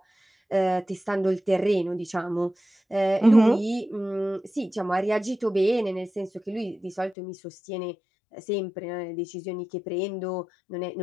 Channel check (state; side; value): drops out; right; at 7.2 s